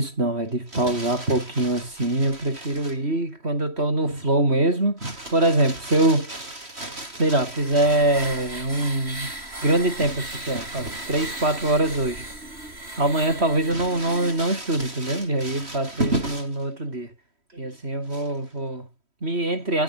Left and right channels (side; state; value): left; late; 3.1 ms